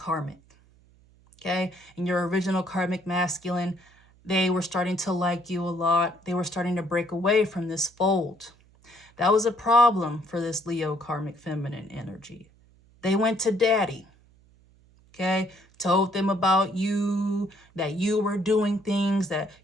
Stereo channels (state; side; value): noise; right; hum, 30 dB below the sound